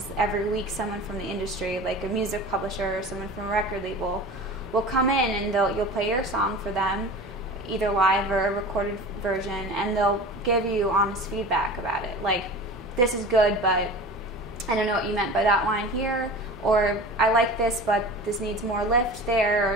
every week someone from the industry, like a music publisher or someone from a record label, will come in and you'll play your song for them, either live or a recorded version, and they'll give you honest feedback about it. Like, this is good, but I don't know what you meant by that line here, or I like this, but this needs more lift there,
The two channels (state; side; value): normal; both; correlation 0.36